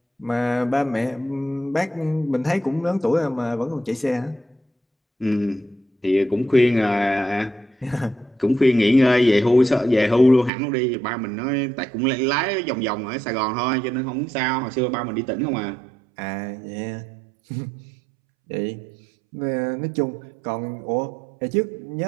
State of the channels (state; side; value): drops out; left; at 10.5 s